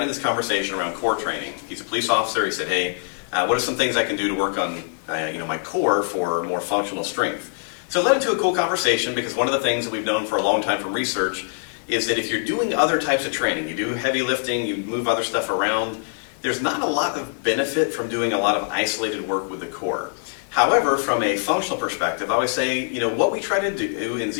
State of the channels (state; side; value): silent; right; digital silence